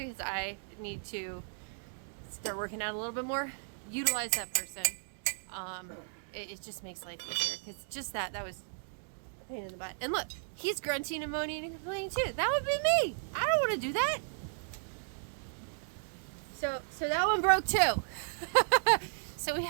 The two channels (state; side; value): silent; left; digital silence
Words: because I need to start working out a little bit more, utilize that person. It just makes life easier, because just that was a pain in the butt. And look, he's grunting and moaning and complaining too. That would be me. I don't want to do that. So that one broke too. So we